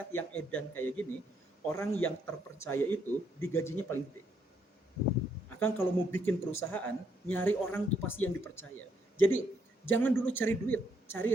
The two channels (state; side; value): normal; both; correlation 0.73